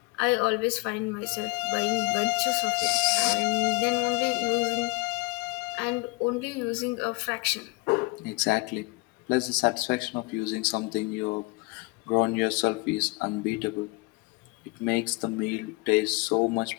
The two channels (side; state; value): right; quieter; 26.1 dB